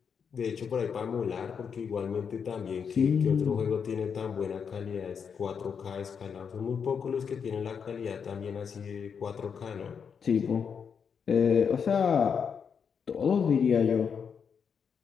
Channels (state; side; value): quieter; right; 6.7 dB